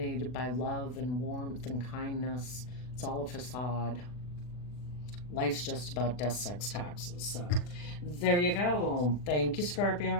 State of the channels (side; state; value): right; late; 40 ms